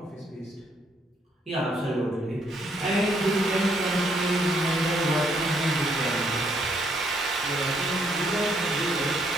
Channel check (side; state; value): both; normal; correlation 0.70